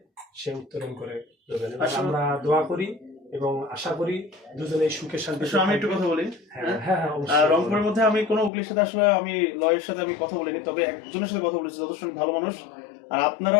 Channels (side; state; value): right; drops out; at 8.5 s